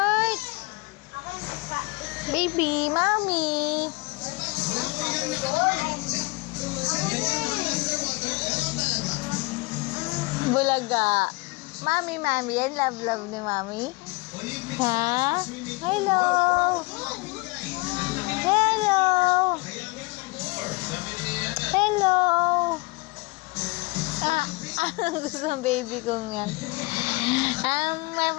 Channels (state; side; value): quieter; right; 25.6 dB